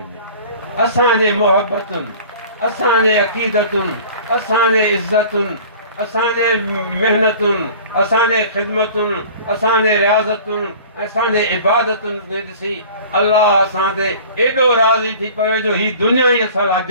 असांजे मोहबतुनि, असांजे अक़ीदतुनि, असांजे इज़तुनि, असांजे महिनतुनि, असांजे ख़िदमतुनि, असांजे रियाज़तुनि, असांजे इबादतुनि खे ॾिसी अलाह असां ते एॾो राज़ी थी पवे जो ही दुनिया ई असां लाइ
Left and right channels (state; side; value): inverted; both; correlation -0.45